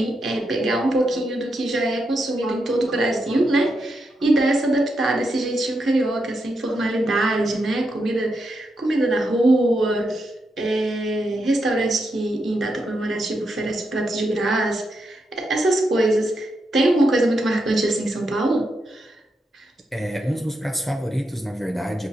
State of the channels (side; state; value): both; normal; correlation 0.84